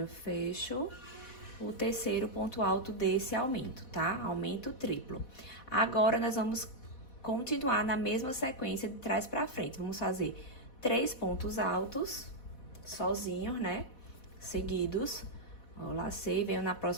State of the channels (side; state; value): right; late; 4.1 ms